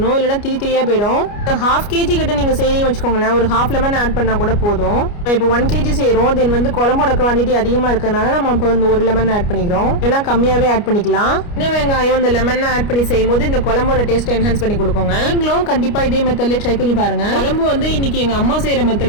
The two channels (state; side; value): late; right; 29 ms